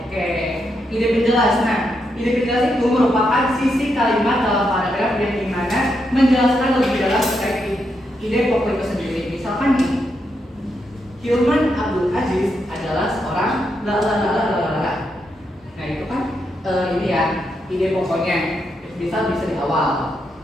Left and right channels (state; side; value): normal; both; correlation 0.82